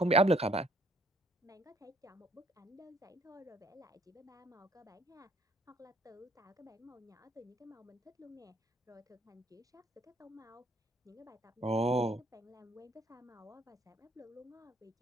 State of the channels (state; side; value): normal; both; correlation 0.62